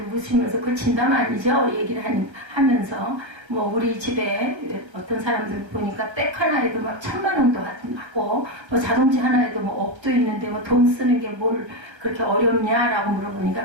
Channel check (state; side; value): late; left; 1.3 ms